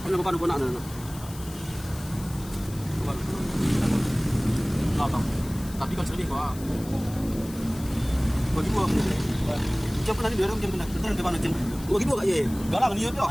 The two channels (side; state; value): left; noise; hiss, 17 dB below the sound